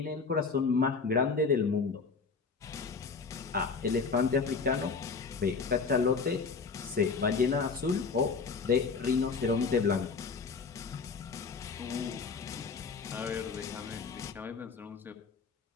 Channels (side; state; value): right; quieter; 4.9 dB